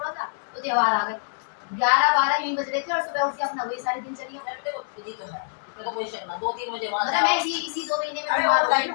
था तो त्योहार आ गए 11-12 यूं बज रहे थे और सुबह उठ के अपना वही सारे दिन चली मैं देखो बिजी तो है मैं तो कोई शक ना 2-3 बजे वहां मतलब मैं इसी 2 महीने में अरे बीमार हो ऑनलाइन गई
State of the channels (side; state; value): right; silent; digital silence